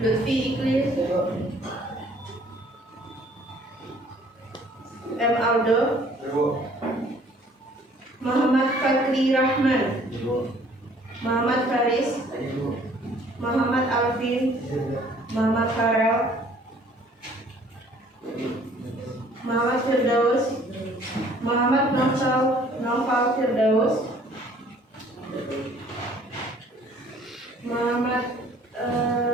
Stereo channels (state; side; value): normal; both; correlation 0.57